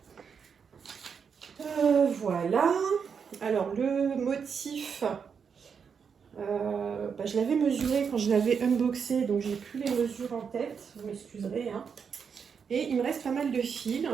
Voilà. Alors, le motif, Je l'avais mesuré quand je l'avais unboxé, donc j'ai plus les mesures en tête, vous m'excuserez. Hein. Et il me reste pas mal de fils,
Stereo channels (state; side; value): quieter; left; 6.5 dB